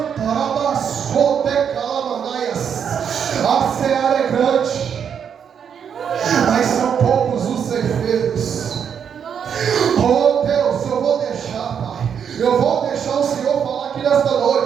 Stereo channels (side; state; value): left; quieter; 7.7 dB